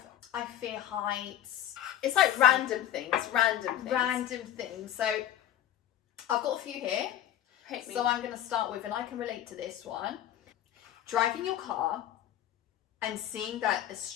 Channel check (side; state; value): right; quieter; 11.7 dB